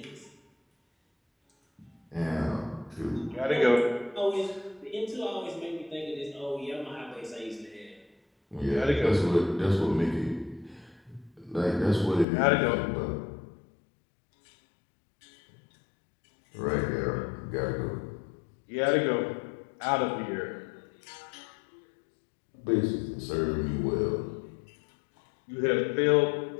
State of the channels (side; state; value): right; drops out; at 12.2 s